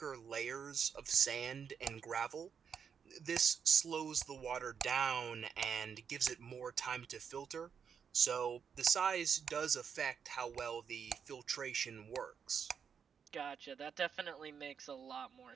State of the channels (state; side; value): quieter; left; 7.0 dB